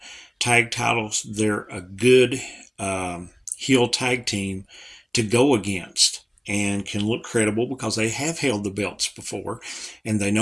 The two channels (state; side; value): identical; both; correlation 1.00